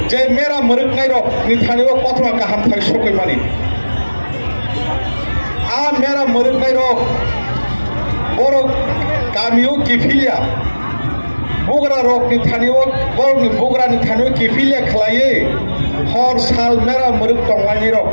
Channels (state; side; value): inverted; both; correlation -1.00